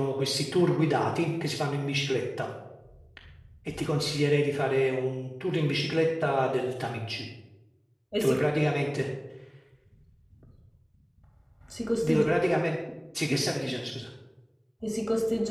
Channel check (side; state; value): both; identical; correlation 1.00